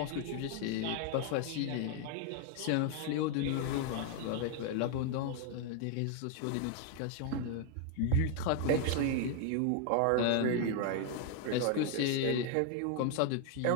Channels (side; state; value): both; different; correlation 0.00